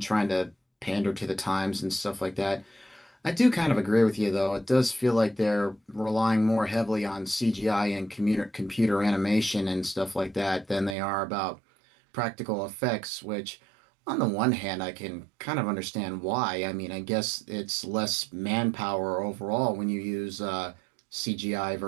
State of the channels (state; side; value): drops out; left; at 11.0 s